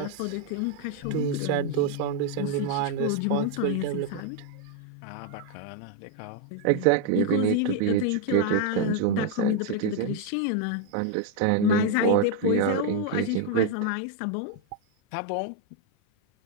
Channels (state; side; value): different; both; correlation 0.00